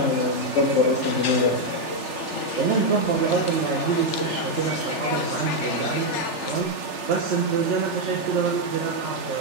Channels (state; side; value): late; right; 3.4 ms